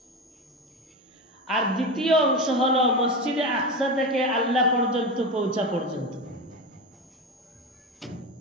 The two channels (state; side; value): normal; both; correlation 0.21